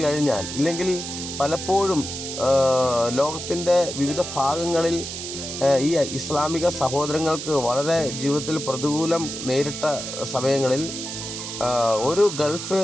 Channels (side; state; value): right; noise; hiss, 7 dB below the sound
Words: കഴിഞ്ഞാൽ, ഇല്ലെങ്കിൽ പലപ്പോഴും ലോകത്തിൻ്റെ വിവിധ ഭാഗങ്ങളിൽ ഈ ഇസ്ലാമിക സഹോദരങ്ങൾക്ക് വളരെ ജീവിതത്തിൽ പ്രതികൂലം നേരിട്ട സമയങ്ങളിൽ ഒരു ഗൾഫ്